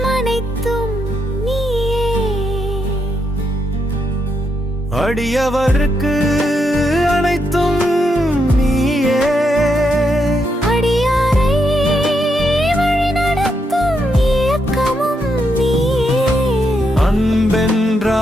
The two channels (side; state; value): both; normal; correlation 0.80